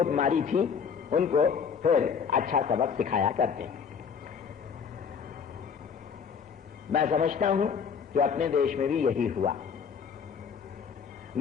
मारी थी उनको फिर अच्छा सबक सिखाया करते हैं। मैं समझता हूं कि अपने देश में भी यही हुआ।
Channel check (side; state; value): right; quieter; 6.5 dB